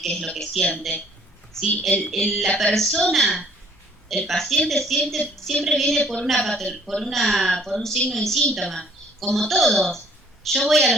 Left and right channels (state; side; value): normal; both; correlation 0.59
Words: qué es lo que siente, ¿sí? La persona, el paciente siempre viene por un signo y síntoma, como todos. Yo voy